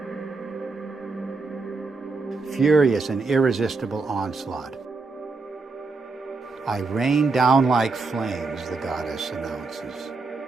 Furious and irresistible onslaught. I rain down like flames, the goddess announces.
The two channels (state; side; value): quieter; left; 3.9 dB